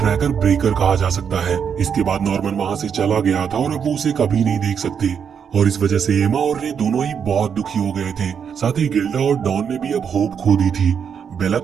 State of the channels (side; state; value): left; quieter; 7.3 dB